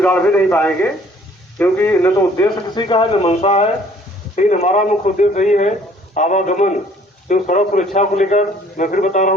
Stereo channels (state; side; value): normal; both; correlation 0.57